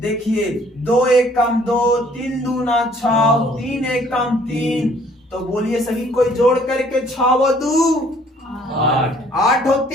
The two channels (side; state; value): both; normal; correlation 0.59